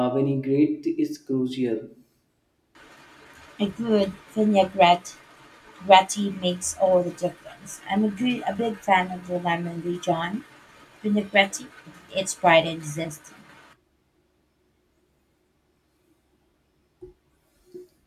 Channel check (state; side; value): identical; both; correlation 1.00